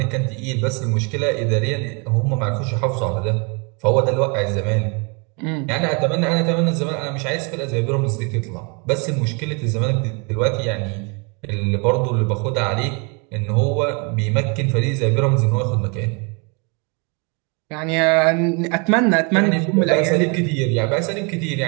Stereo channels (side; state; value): left; quieter; 33.2 dB